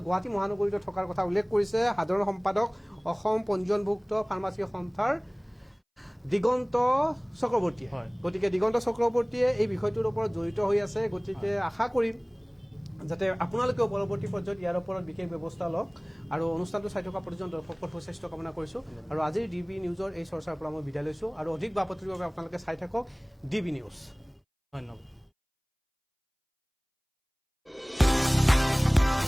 গুৱাহাটী মহানগৰীত থকাৰ কথা উল্লেখ কৰিছে সাধাৰণ সম্পাদক অসম পঞ্জীয়নভুক্ত ফাৰ্মাচী সন্থাৰ দিগন্ত চক্ৰৱৰ্তীয়ে। গতিকে দিগন্ত চক্ৰৱৰ্তীয়ে এই বিষয়টোৰ ওপৰত জড়িত হৈ আছে। গতিকে আশা কৰিম যাতে আপোনালোকেও পৰৱৰ্তী পৰ্যায়ত ইয়াৰ ওপৰত বিশেষ ব্যৱস্থা লওক আৰু অনুষ্ঠানটো চাই থকা প্ৰতিজন দৰ্শকৰ সুস্বাস্থ্য কামনা কৰিছোঁ আৰু আজিৰ DB নিউজৰ এই চৰ্চাৰ পৰা মই বিদায় লৈছোঁ আৰু অধিক বাপতিৰ বাবে আপোনালোকে চাই থাকক DB নিউজ। ধন্যবাদ।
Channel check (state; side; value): identical; both; correlation 1.00